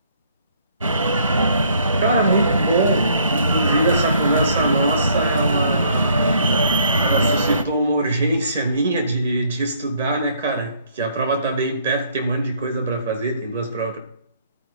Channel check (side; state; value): both; inverted; correlation -0.63